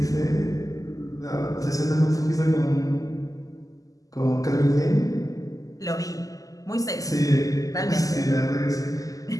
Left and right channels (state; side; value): late; right; 0.17 ms